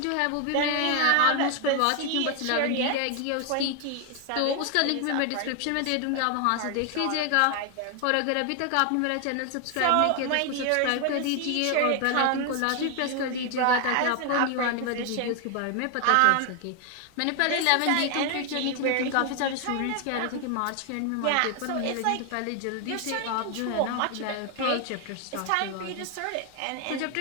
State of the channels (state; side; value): different; both; correlation 0.01